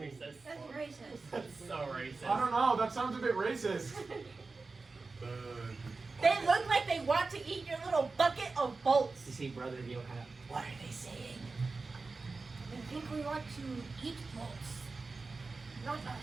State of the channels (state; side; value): quieter; left; 3.9 dB